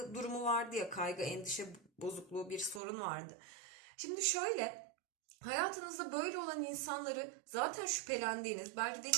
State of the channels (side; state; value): left; drops out; at 2.8 s